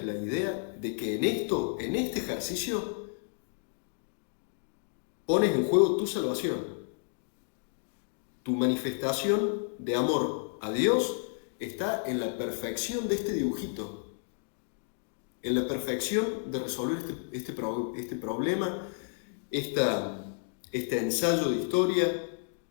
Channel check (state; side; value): silent; right; digital silence